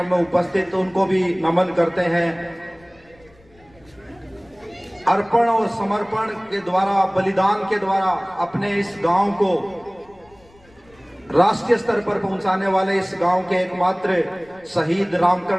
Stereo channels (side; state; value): left; noise; rumble, 29 dB below the sound